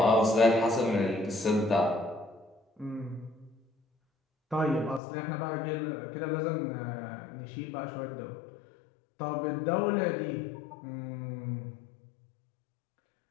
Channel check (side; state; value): right; drops out; at 5.0 s